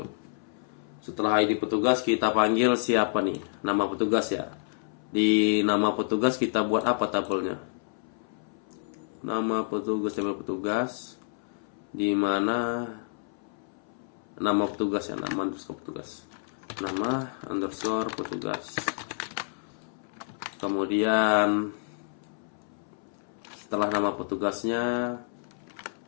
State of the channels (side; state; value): right; silent; 59 dB below the other